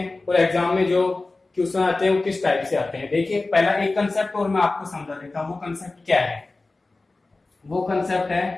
और एग्जाम में जो क्वेश्चन आते हैं वो किस टाइप से आते हैं। देखिए पहला एक कंसेप्ट और मैं आपको समझा देता हूं। वो कंसेप्ट क्या है, वो कंसेप्ट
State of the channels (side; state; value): right; quieter; 3.3 dB